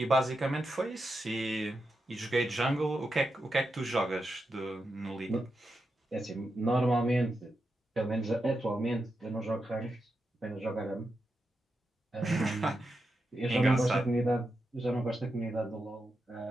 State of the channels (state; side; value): normal; both; correlation 0.87